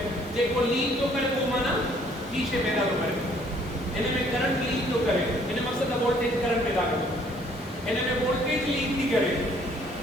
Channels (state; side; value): normal; both; correlation 0.61